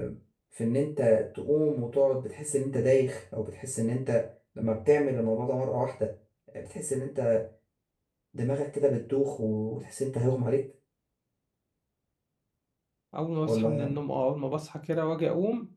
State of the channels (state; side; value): identical; both; correlation 1.00